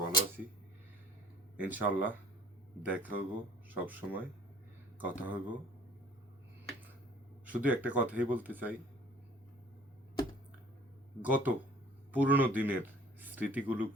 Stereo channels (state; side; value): normal; both; correlation 0.52